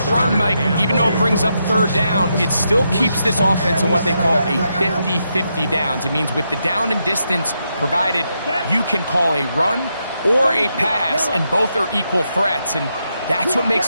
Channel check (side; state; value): both; inverted; correlation -0.83